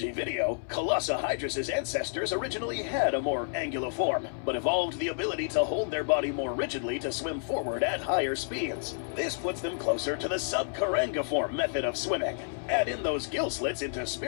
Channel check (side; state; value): right; silent; 58 dB below the other